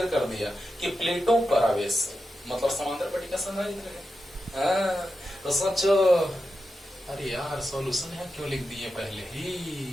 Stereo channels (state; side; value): normal; both; correlation 0.89